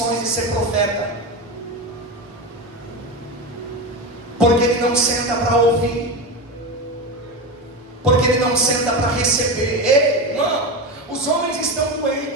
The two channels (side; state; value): both; normal; correlation 0.20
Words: de ser profeta, porque ele não senta para ouvir, porque ele não senta para receber. Ei, irmão, os homens estão